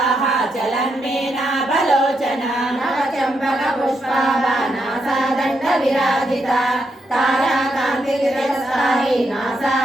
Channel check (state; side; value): normal; both; correlation 0.81